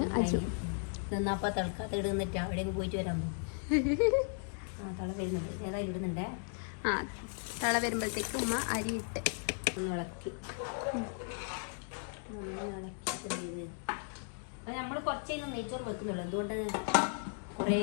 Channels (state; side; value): silent; right; 54 dB below the other